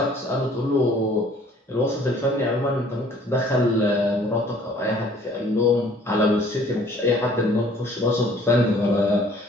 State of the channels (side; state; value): both; normal; correlation 0.55